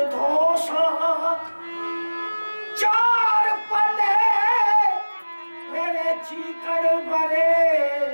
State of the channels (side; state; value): both; inverted; correlation -1.00